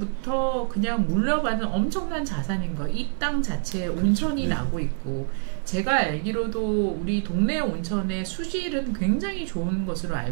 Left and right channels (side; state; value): left; silent; 61 dB below the other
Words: 그냥 물려받는 엄청난 자산인 거. 이 땅 자체에 온천이 나고 있고 제가 알기로도 우리 동네 온천의 수질은 굉장히 좋은 것으로